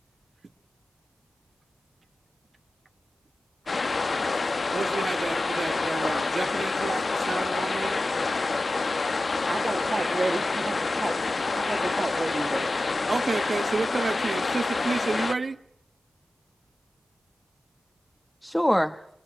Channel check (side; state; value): both; normal; correlation 0.94